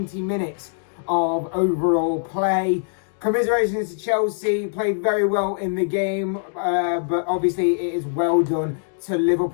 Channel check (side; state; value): right; silent; digital silence